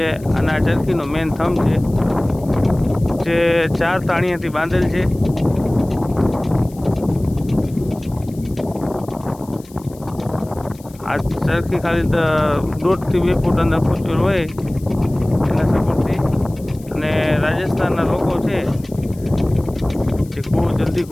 અને આ ચરખીનો મેન થંભ છે જે 4 તાણિયાથી બાંધેલ છે। આ ચરખી ખાલી 1.5 થી 2 ફૂટ અંદર ખૂંચેલ હોય એના સપોર્ટથી। અને રાજસ્થાનના લોકો છે જે કૂવો જલ્દી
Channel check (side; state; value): left; noise; hiss, 24 dB below the sound